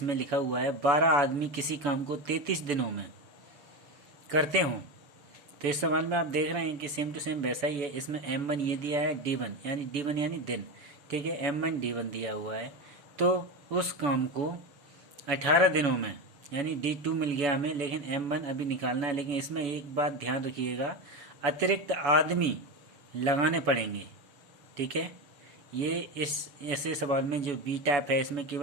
लिखा हुआ है 12 आदमी किसी काम को 33 दिनों में करते हों। तो इस सवाल में आप देख रहे हैं कि सेम टू सेम वैसा ही है। इसमें M1 ये दिया है, D1 यानी दिन, ठीक है, M1 D1 दिया हुआ है। तो उस काम को 18 दिनों में, यानी D2 मिल गया हमें, लेकिन M1 अभी निकालना है। लेकिन इसमें एक बात ध्यान रखिएगा, अतिरिक्त आदमी लगाने पड़ेंगे। ठीक है, ये इस ऐसे सवाल में जो बी टैप है, इसमें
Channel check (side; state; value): left; late; 7.0 ms